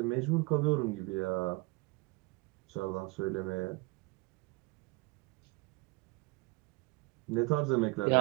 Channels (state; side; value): quieter; left; 25.3 dB